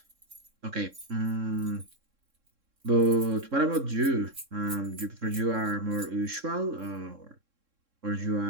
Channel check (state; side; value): late; left; 3.7 ms